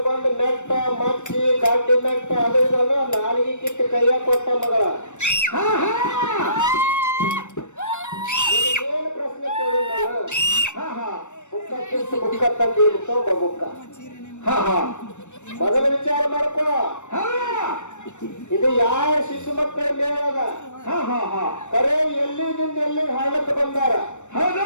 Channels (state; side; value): late; right; 0.84 ms